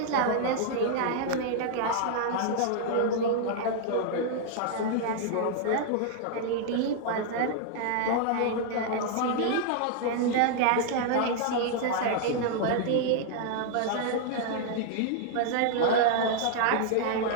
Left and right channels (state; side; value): different; both; correlation -0.01